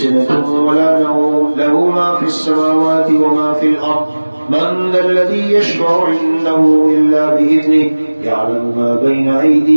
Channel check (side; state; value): both; inverted; correlation -1.00